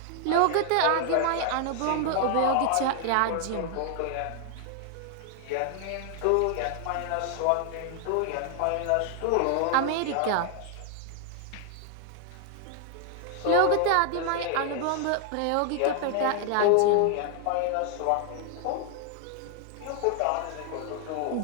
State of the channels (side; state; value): both; different; correlation 0.00